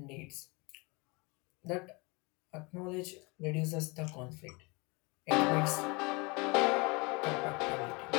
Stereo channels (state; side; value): quieter; right; 27.5 dB